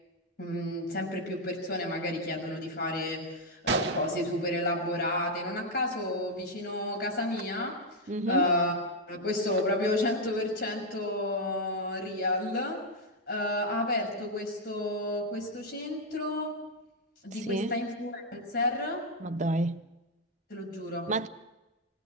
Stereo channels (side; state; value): both; normal; correlation 0.01